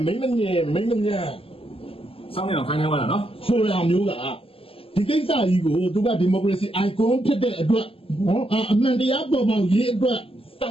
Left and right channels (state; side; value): late; right; 0.27 ms